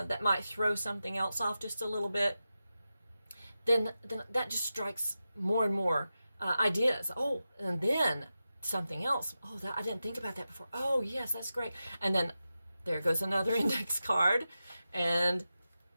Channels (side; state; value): both; inverted; correlation -0.92